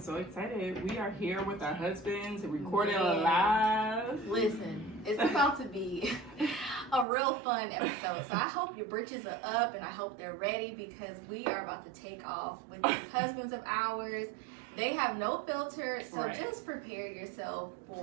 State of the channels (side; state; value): left; drops out; at 7.1 s